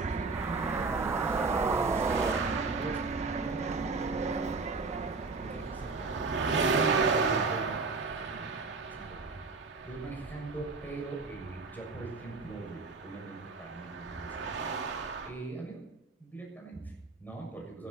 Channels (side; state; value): left; quieter; 4.1 dB